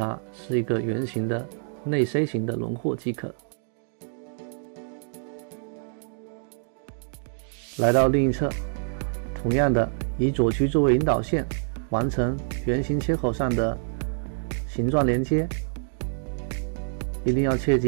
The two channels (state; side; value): silent; left; digital silence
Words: 是一个圆形的内 C 型的轮廓即可。来到另一侧，同样的以左区作为引导线，完成圆形切口上的形状连接。一定要切